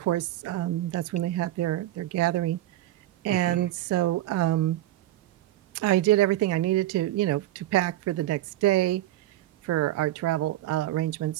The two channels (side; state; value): left; quieter; 14.6 dB